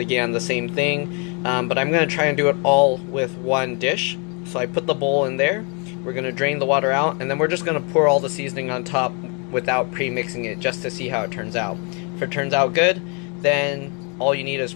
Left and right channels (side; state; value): right; quieter; 34.9 dB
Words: the same thing, but I'm going to try and do it all with one dish. So I put the bowl in there, we're going to drain the water out, and then we're just going to pour all the seasoning on top without pre-mixing it, just to see how it turns out. If it turns out good, then all you need is